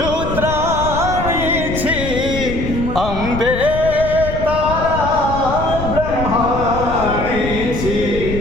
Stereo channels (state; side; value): noise; left; rumble, 6 dB below the sound